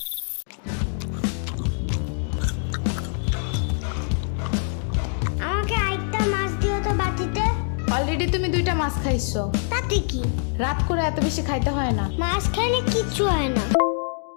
আমাকে আরেকটা মাছ দিও তো বাটিতে। অলরেডি তুমি 2টা মাছ খাইছো। তাতে কি? রাত করে এত বেশি খাইতে হয় না। মাছ খাইলে কিচ্ছু হয় না।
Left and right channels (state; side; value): silent; right; 58 dB below the other